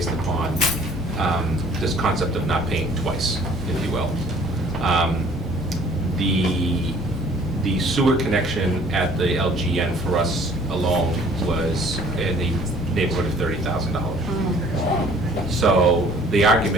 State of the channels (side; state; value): both; normal; correlation 0.54